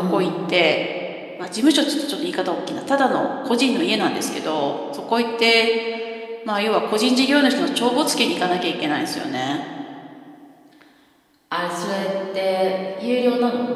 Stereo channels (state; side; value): identical; both; correlation 1.00